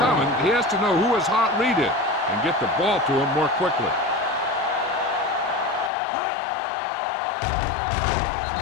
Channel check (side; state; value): right; drops out; at 5.9 s